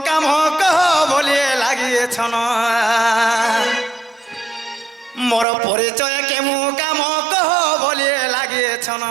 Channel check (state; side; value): drops out; left; at 5.5 s